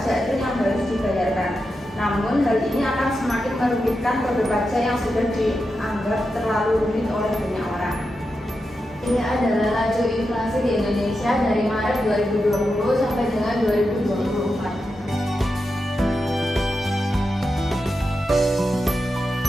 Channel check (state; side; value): normal; both; correlation 0.88